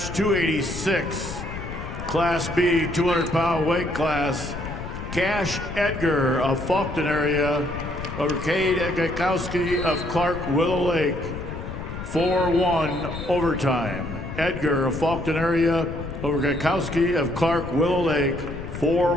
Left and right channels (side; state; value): left; noise; rumble, 8 dB below the sound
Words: 286, Class B, 200-pound weight class. Cash Edgar of Faulkton area over Cade Gakowski of Clark Willow Lake, 4-1 overtime. Edgar of Faulkton area over Gakowski of Clark Willow Lake,